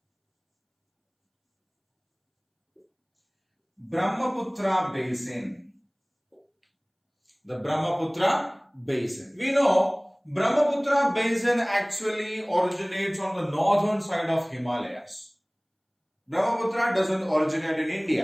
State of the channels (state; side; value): identical; both; correlation 1.00